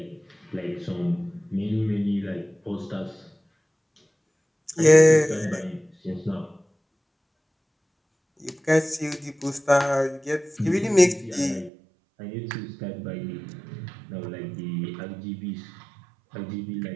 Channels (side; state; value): left; drops out; at 11.7 s